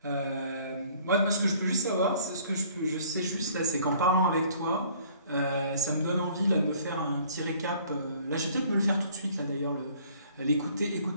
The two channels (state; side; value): inverted; both; correlation -0.56